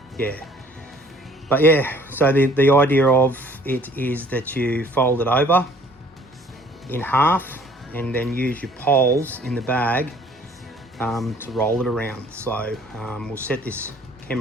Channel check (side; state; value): both; normal; correlation 0.55